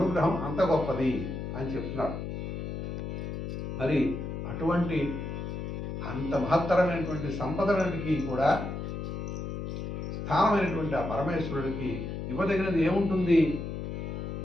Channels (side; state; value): left; noise; hum, 5 dB below the sound